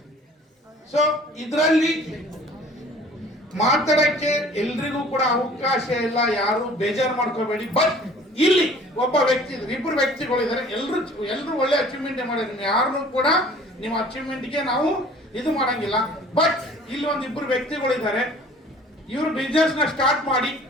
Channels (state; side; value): normal; both; correlation 0.50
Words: so ಇದರಲ್ಲಿ ಮಾತಾಡಕ್ಕೆ ಎಲ್ರಿಗೂ ಕೂಡ ಅವಕಾಶ ಇಲ್ಲ, ಯಾರು ಬೇಜಾರು ಮಾಡ್ಕೋಬೇಡಿ. ಬಟ್ ಇಲ್ಲಿ ಒಬ್ಬ ವ್ಯಕ್ತಿ ಇದ್ದಾರೆ, ಇಬ್ಬರು ವ್ಯಕ್ತಿಗಳಿದ್ದಾರೆ, ಎಲ್ರು ಒಳ್ಳೆ ಅಚೀವ್ಮೆಂಟ್ ಮಾಡಿದ್ರೆ ಯಾರನ್ನು ಕೂಡ ನಿಮ್ಮ ಅಚೀವ್ಮೆಂಟ್ಗೆ ನಾವು ಇದು ಮಾಡಂಗಿಲ್ಲ. ಬಟ್ ಇಲ್ಲಿ ಒಂದಿಬ್ಬರು ವ್ಯಕ್ತಿಗಳಿದ್ದಾರೆ, ಇವರು ಬಿಸ್ನೆಸ್ ನ ಸ್ಟಾರ್ಟ್ ಮಾಡಿ